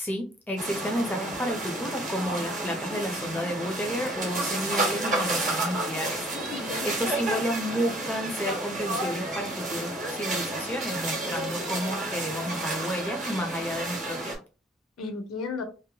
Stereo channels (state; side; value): normal; both; correlation 0.57